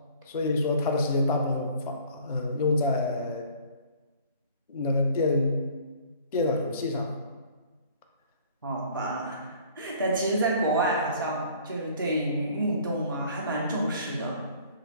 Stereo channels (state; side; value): inverted; both; correlation -0.53